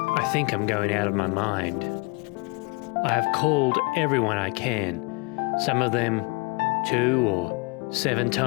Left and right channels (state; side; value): quieter; right; 29.0 dB